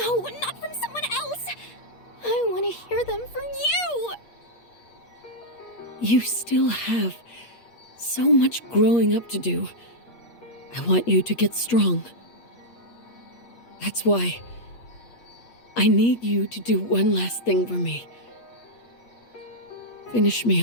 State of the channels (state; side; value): late; right; 8.4 ms